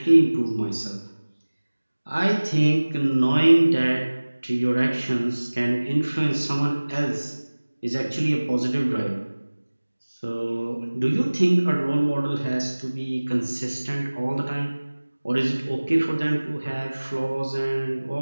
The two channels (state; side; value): inverted; both; correlation -1.00